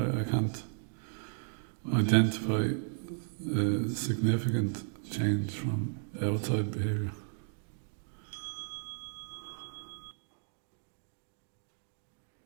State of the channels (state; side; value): silent; left; 55 dB below the other